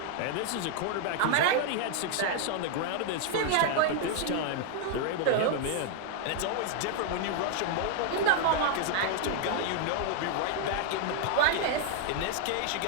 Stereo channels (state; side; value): different; both; correlation 0.00